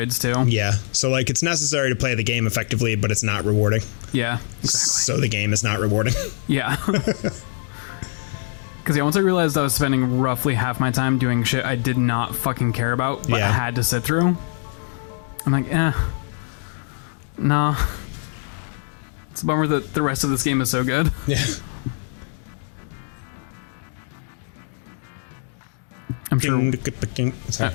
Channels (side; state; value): right; silent; digital silence